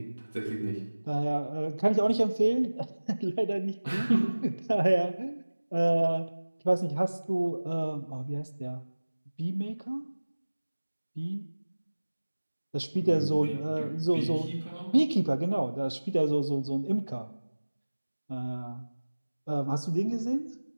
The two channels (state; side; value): inverted; both; correlation -1.00